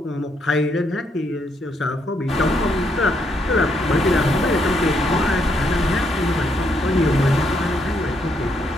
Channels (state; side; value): normal; both; correlation 0.75